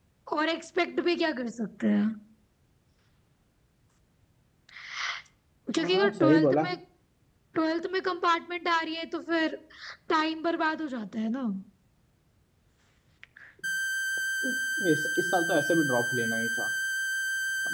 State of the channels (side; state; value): both; identical; correlation 1.00